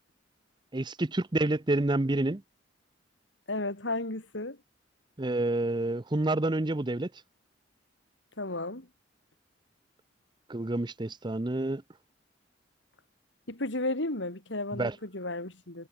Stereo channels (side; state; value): both; normal; correlation 0.54